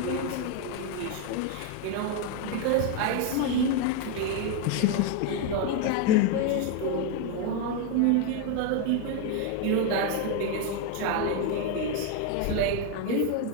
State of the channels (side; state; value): both; different; correlation 0.01